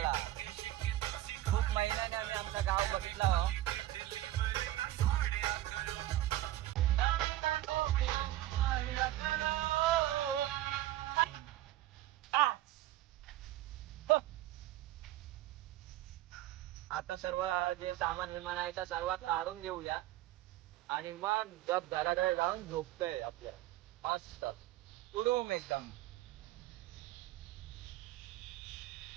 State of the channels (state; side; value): quieter; left; 15.1 dB